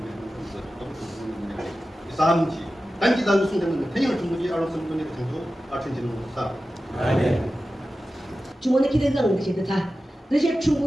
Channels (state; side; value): normal; both; correlation 0.94